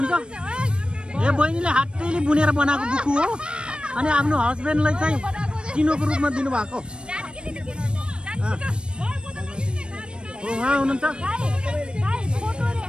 यो बहिनीले हातैले बुनेर बनाएको बुकु हो अनि आफ्नो हस्बेन्डलाई चाहिँ चिनोको रूपमा दिनुभएको उहाँ हुनुहुन्छ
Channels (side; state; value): left; late; 0.054 ms